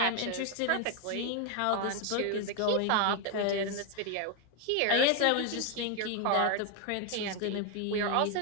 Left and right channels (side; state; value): both; different; correlation 0.01